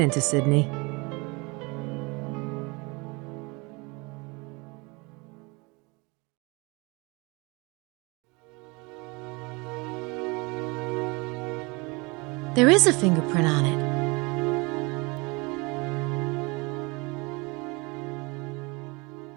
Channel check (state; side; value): quieter; left; 27.2 dB